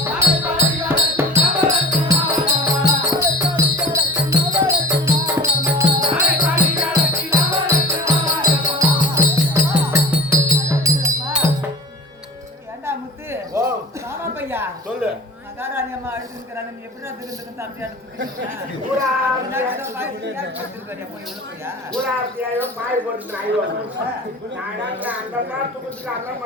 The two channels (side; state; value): both; normal; correlation 0.38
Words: சொல்லு மகாராணி அம்மா அழுதுக்கிறாங்க. நீ எப்படி திருந்துக்கு தம்பி பாய் போட்டு